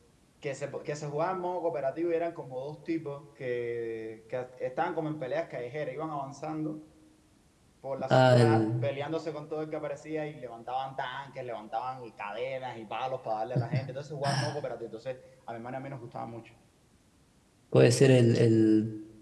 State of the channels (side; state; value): both; identical; correlation 1.00